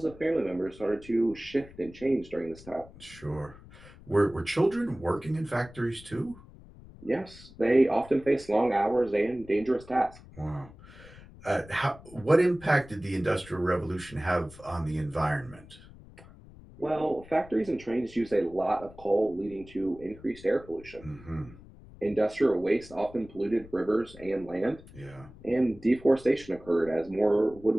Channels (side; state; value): left; noise; rumble, 20 dB below the sound